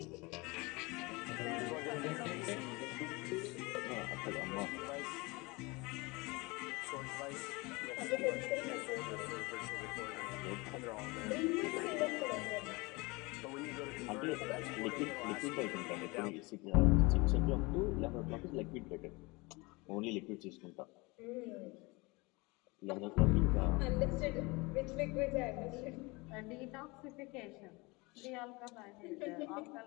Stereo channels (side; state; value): right; quieter; 25.3 dB